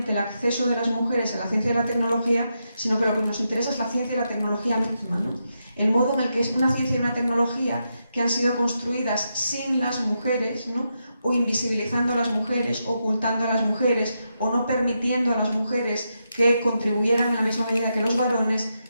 el acceso de las mujeres a la ciencia y la tecnología, sino que lo que nos interesa es la ciencia y la tecnología misma, ¿no? El modo en el que es una ciencia y una tecnología que han sido construidas sin las mujeres, ¿no? O invisibilizando a las mujeres, ocultando a las mujeres, o no permitiendo a las mujeres que contribuyeran en la misma medida que los varones,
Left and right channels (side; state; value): both; inverted; correlation -0.84